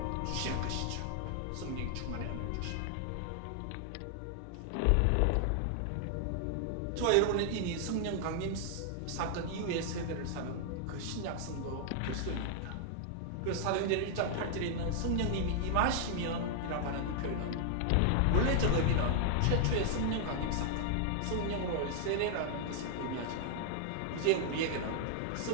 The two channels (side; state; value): both; different; correlation 0.00